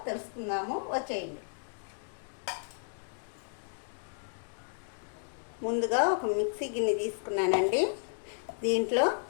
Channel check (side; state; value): right; silent; digital silence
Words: తెలుసుకుందాము. వచ్చేయండి. ముందుగా ఒక మిక్సీ గిన్నె తీసుకున్నానండి. దీంట్లో